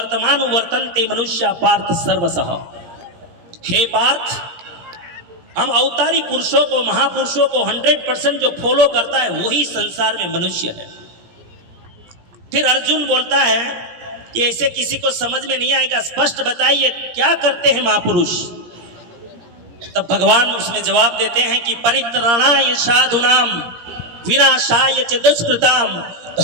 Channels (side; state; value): left; late; 17 ms